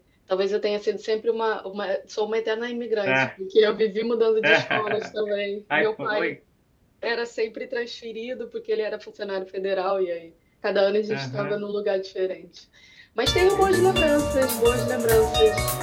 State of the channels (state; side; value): identical; both; correlation 1.00